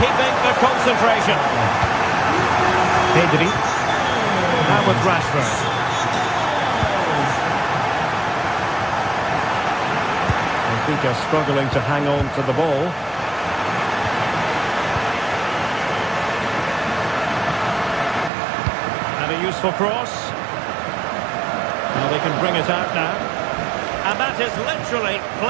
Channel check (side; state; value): left; drops out; at 18.3 s